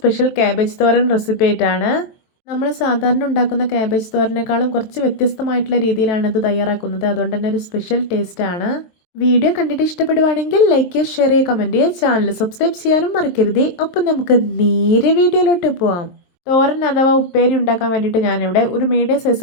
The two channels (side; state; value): right; late; 23 ms